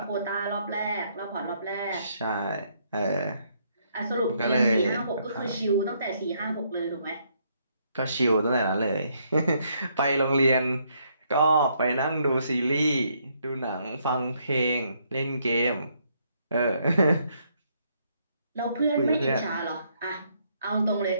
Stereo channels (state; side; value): inverted; both; correlation -0.72